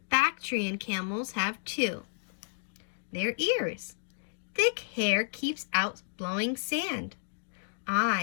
Bactrian camels have 2. Their ears. Thick hair keeps out blowing sand.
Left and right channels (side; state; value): right; silent; digital silence